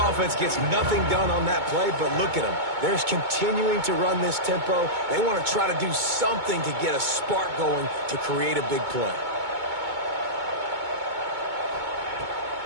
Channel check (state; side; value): late; left; 2.2 ms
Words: gets nothing done on that play, but look at them. They're continuing to run this tempo. They want to try to do something to get a spark going to create a big play.